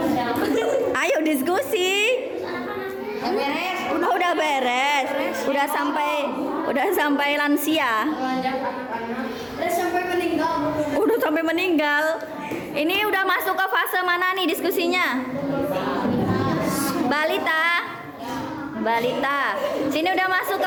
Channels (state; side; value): identical; both; correlation 1.00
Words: Ayo diskusi. Udah beres. Udah sampai lansia. Udah sampai meninggal. Ini udah masuk ke fase mana nih diskusinya? Balita. Sini udah masuk